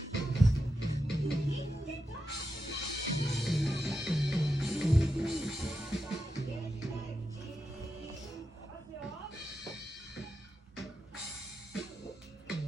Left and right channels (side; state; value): both; normal; correlation 0.88